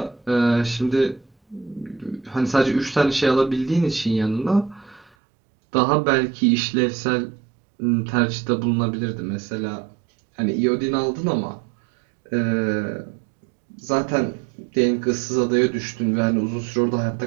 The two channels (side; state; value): left; drops out; at 5.1 s